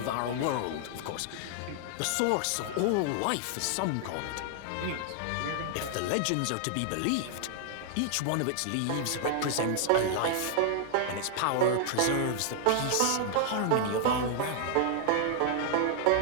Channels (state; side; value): different; both; correlation -0.01